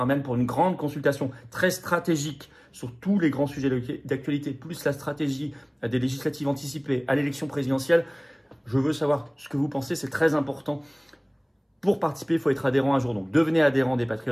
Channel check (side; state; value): both; identical; correlation 1.00